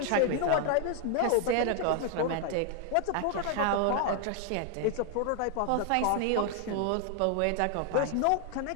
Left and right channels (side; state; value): both; different; correlation 0.00